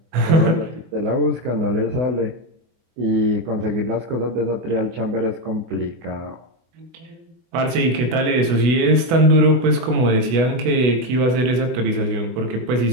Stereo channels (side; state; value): left; late; 24 ms